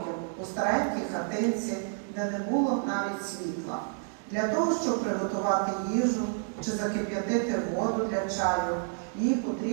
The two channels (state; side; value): silent; left; 58 dB below the other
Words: у старенькій хатинці, де не було навіть світла. Для того, щоб приготувати їжу чи закип'ятити воду для чаю, їй